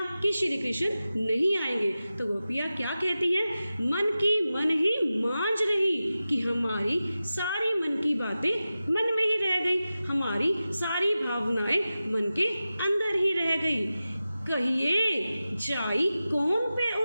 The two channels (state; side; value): inverted; both; correlation -0.94